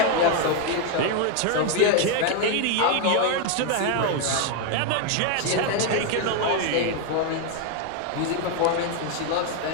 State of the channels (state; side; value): different; both; correlation 0.01